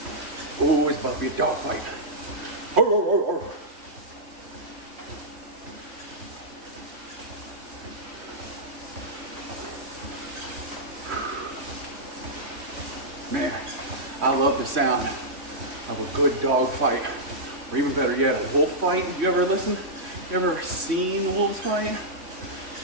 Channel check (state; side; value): late; left; 3.1 ms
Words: Oh, it's about to be a dogfight. Man, I love the sound of a good dog fight. Or even better yet, a wolf fight. You ever listen? You ever seen wolves fight?